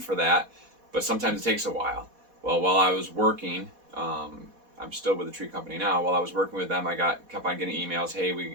that, but sometimes it takes a while. Well, while I was working, I'm still with the tree company now. While I was working with them, I kept on getting emails. Hey,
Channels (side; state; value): left; late; 4.1 ms